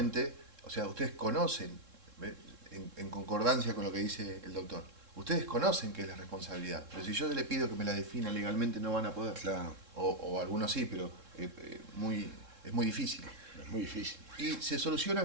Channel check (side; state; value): left; late; 3.7 ms